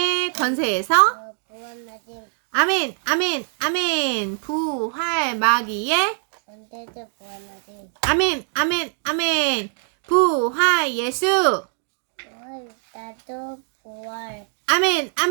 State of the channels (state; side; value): silent; left; 64 dB below the other